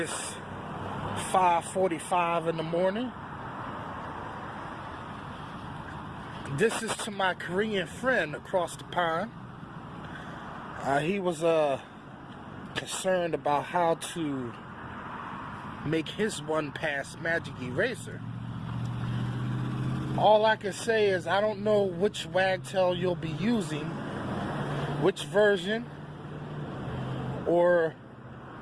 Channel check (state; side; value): identical; both; correlation 1.00